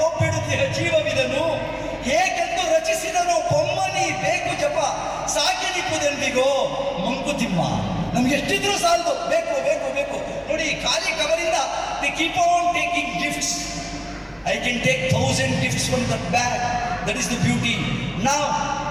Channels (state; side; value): identical; both; correlation 1.00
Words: ಜೀವವಿದನು ಏಕೆಂದು ರಚಿಸಿದನು ಬೊಮ್ಮನಿ ಬೇಕು ಜಪ ಸಾಕಿನಿಪ್ಪುದೆಂದಿಗೋ ಮಂಕುತಿಮ್ಮ. ನಮ್ಗೆ ಎಷ್ಟಿದ್ರು ಸಾಲದು, ಬೇಕು ಬೇಕು ಬೇಕು. ನೋಡಿ, ಖಾಲಿ ಕವರಿಂದ they keep on taking gifts. I can take 1000 gifts from that bag. That is the beauty. Now,